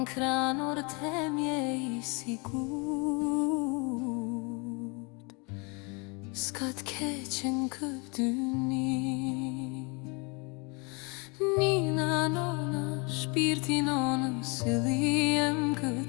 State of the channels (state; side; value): quieter; right; 31.0 dB